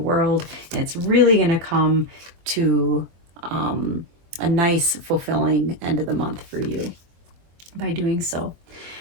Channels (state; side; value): late; left; 24 ms